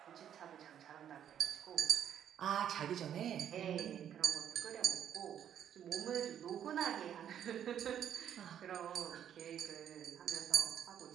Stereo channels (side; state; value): left; quieter; 9.7 dB